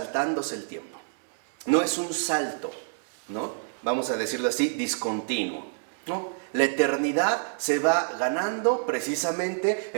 el tiempo. No es un salto, ¿no? Vamos a decirlo así, discontinuo, ¿no? La eternidad se va ganando precisamente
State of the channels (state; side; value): silent; left; 60 dB below the other